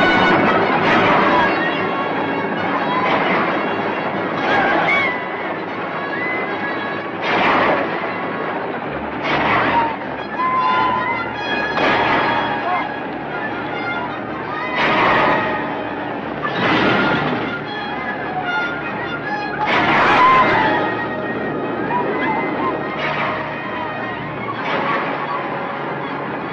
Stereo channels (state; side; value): identical; both; correlation 1.00